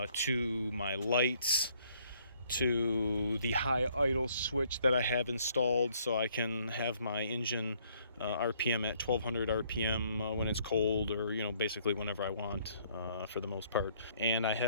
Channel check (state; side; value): inverted; both; correlation -0.65